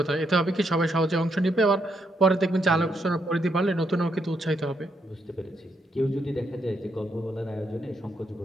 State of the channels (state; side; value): normal; both; correlation 0.78